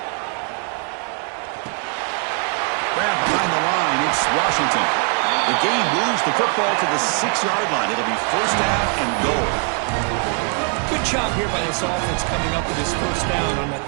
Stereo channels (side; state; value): left; quieter; 38.3 dB